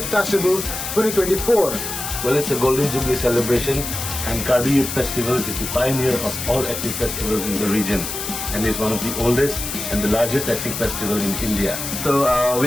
Festival 2024. Well, it's a Golden Jubilee celebration, and KARBI Youth Festival is the pioneer of all ethnic festivals in the region, and is one of the oldest and the largest ethnic festival in India. So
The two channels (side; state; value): left; noise; hiss, 5 dB below the sound